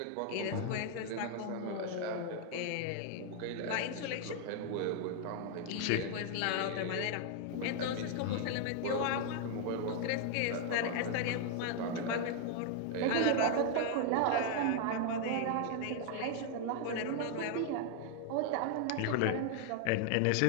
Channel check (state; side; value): different; both; correlation 0.00